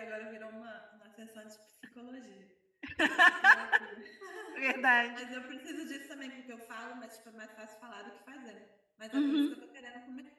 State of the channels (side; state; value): both; identical; correlation 1.00